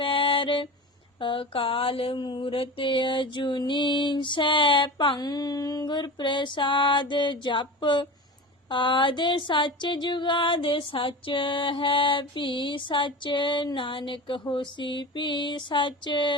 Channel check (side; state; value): both; normal; correlation 0.30